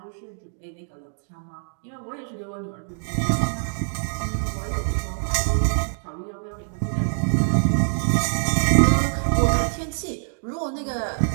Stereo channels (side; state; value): left; silent; digital silence